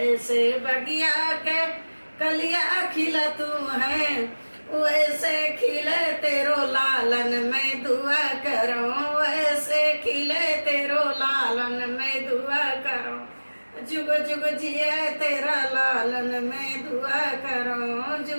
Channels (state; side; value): inverted; both; correlation -1.00